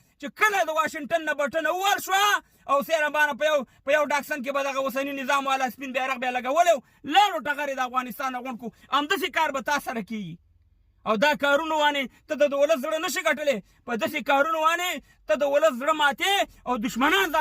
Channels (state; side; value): identical; both; correlation 1.00